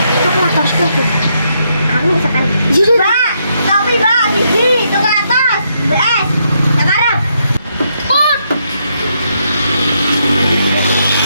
Coklat harus kopi. Aku sekarang. Iya, Mbak, kopi Mbak, siji, tukar atas. BS. Sekarang. Put.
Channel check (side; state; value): both; inverted; correlation -0.77